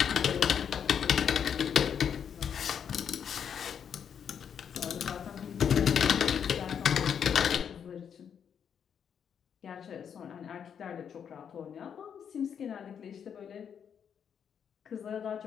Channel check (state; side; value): quieter; right; 7.8 dB